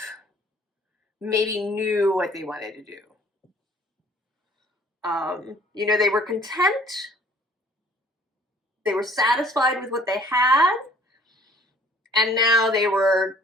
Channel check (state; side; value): normal; both; correlation 0.56